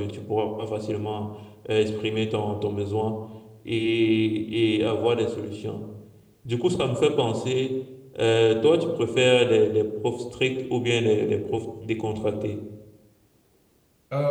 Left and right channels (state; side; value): identical; both; correlation 1.00